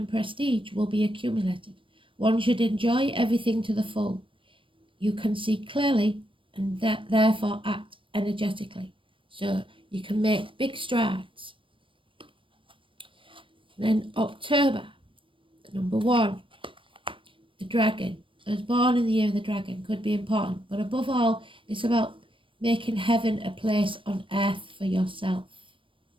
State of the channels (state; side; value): late; left; 0.25 ms